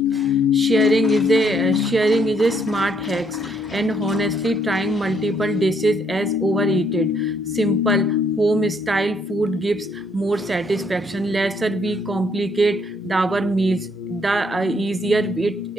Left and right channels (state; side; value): normal; both; correlation 0.69